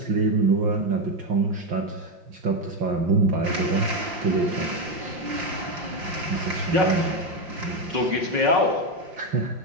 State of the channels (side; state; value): left; late; 5.7 ms